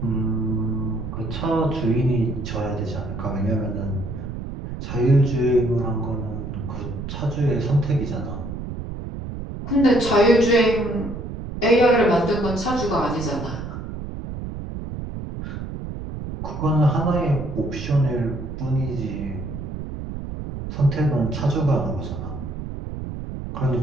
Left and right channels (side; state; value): right; noise; rumble, 7 dB below the sound